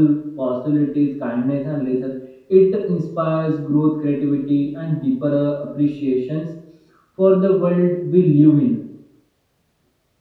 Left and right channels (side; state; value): both; identical; correlation 1.00